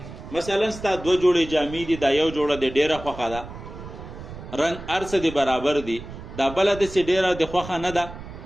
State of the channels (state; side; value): noise; right; rumble, 13 dB below the sound